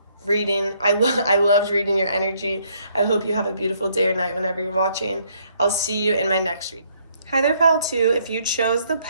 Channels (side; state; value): both; inverted; correlation -0.68